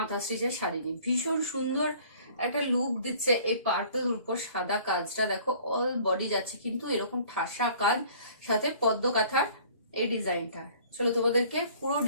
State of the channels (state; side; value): inverted; both; correlation -0.52